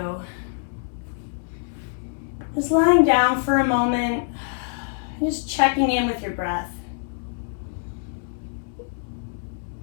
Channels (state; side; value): silent; right; 62 dB below the other